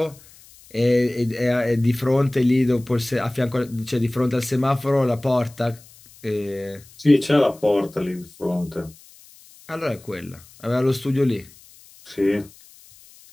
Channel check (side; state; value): left; noise; hiss, 24 dB below the sound